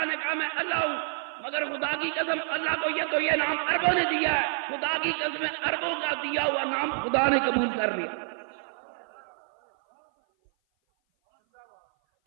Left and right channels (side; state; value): left; silent; 56 dB below the other